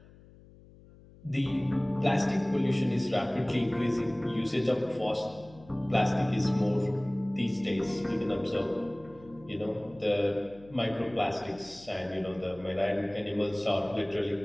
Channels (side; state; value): left; noise; hum, 23 dB below the sound